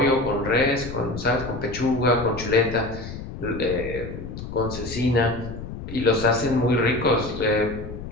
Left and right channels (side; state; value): left; noise; rumble, 9 dB below the sound